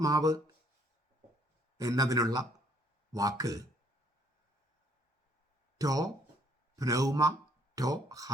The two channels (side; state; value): both; normal; correlation 0.65